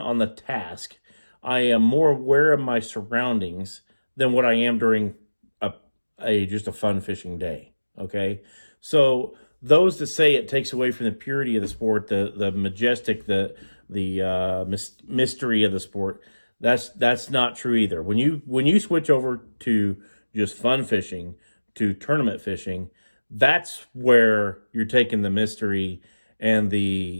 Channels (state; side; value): inverted; both; correlation -1.00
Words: the task. I am more aware of my surroundings than what I am during just a fun fishing day. Okay, so those that say it takes away from the purity of the sport, the majestic, the mystery of the sport, that's not true either. When you switch over to just fun fishing to tournament fishing, that's where you're taking the mystery and